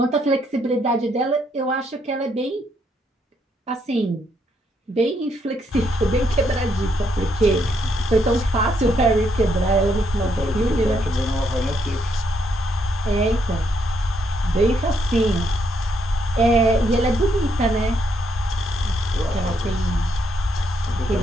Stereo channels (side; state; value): both; normal; correlation 0.74